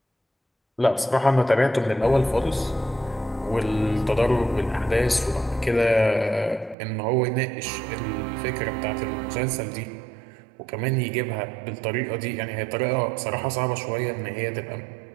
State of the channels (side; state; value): left; drops out; at 6.8 s